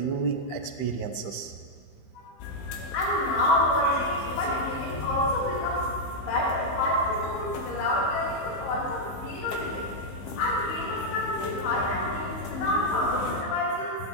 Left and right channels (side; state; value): right; late; 15 ms